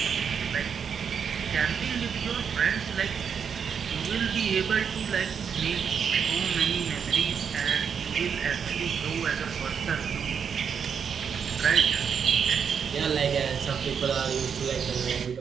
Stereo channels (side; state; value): left; quieter; 7.0 dB